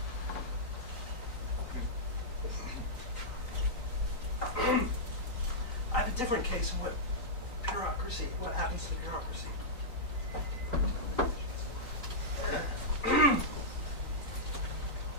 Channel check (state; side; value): late; right; 3.9 ms